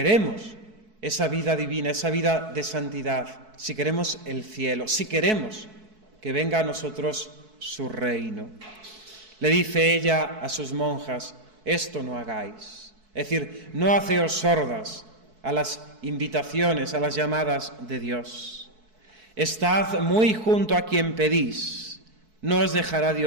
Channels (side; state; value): left; late; 4.6 ms